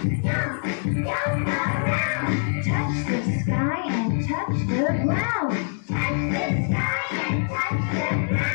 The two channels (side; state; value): right; silent; digital silence